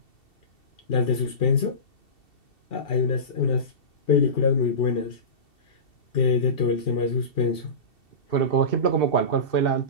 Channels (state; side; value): late; right; 2.7 ms